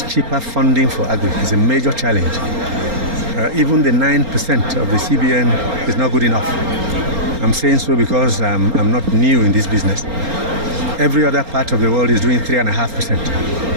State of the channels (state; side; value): late; left; 4.3 ms